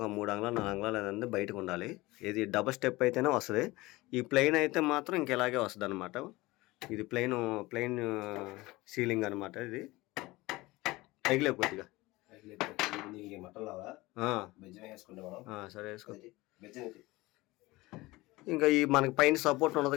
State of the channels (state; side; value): quieter; right; 20.6 dB